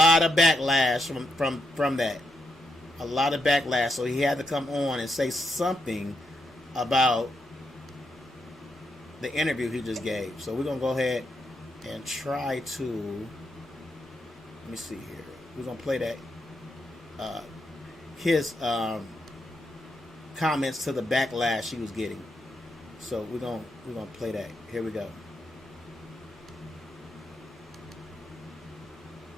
of backlash from that. A lot of backlash, so he had to come on and say something about the interview he just gave. So we're gonna go ahead and try to, let me see here. We're gonna play that his comments to the backlash he was getting. So we're gonna play that. Here we go.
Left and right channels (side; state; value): both; normal; correlation 0.81